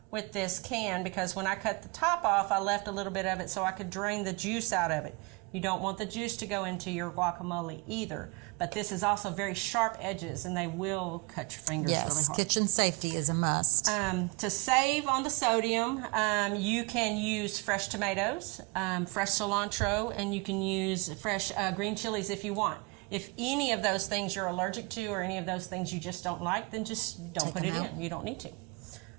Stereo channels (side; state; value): left; quieter; 28.0 dB